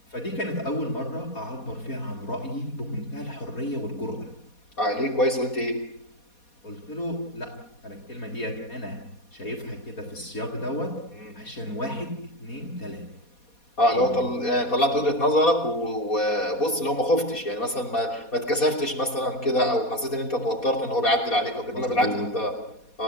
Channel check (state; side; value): late; right; 4.2 ms